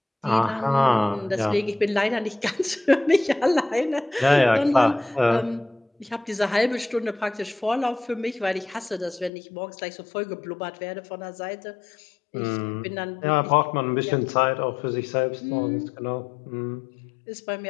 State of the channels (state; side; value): drops out; right; at 9.3 s